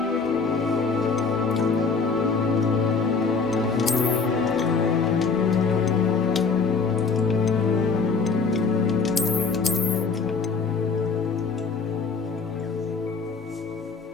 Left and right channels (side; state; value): right; quieter; 4.9 dB